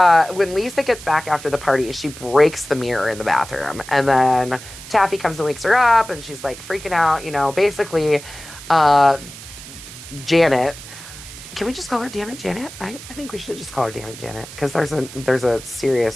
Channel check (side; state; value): right; noise; hiss, 15 dB below the sound